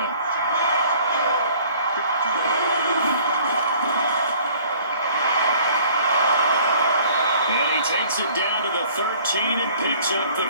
Takes it down to the 13 and picks up the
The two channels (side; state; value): both; inverted; correlation -0.54